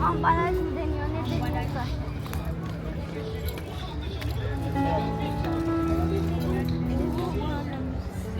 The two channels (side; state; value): both; identical; correlation 1.00